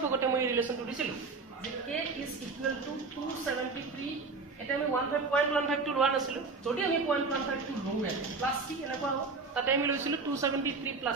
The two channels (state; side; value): quieter; left; 4.2 dB